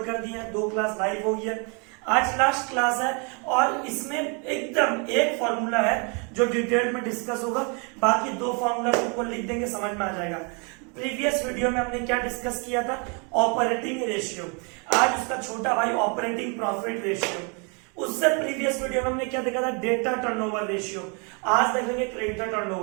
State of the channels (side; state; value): left; quieter; 34.5 dB